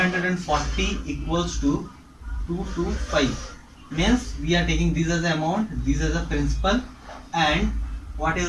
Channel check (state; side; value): identical; both; correlation 1.00